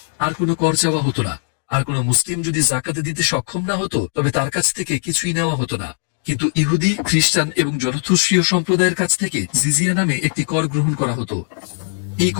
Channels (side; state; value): right; silent; digital silence